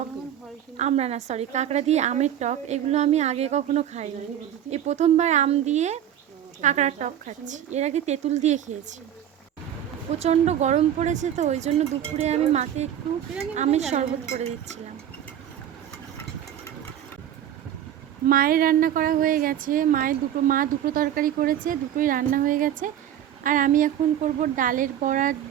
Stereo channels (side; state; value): left; quieter; 10.6 dB